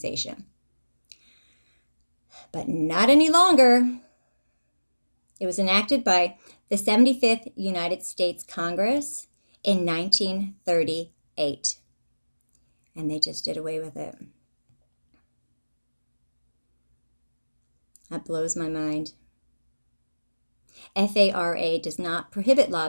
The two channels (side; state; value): both; inverted; correlation -1.00